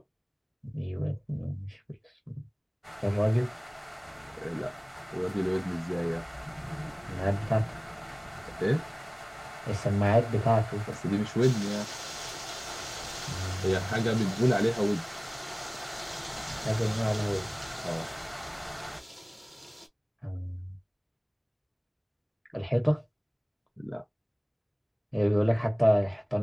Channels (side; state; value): both; identical; correlation 1.00